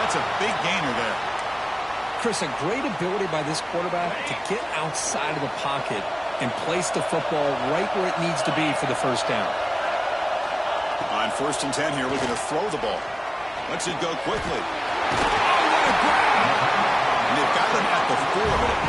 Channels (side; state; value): both; identical; correlation 1.00